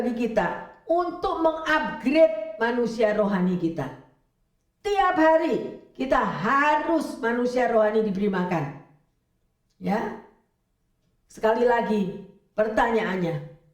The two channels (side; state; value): both; identical; correlation 1.00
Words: kita untuk mengupgrade manusia rohani kita. Tiap hari kita harus manusia rohani diberi makan, ya. Sekali lagi pertanyaannya,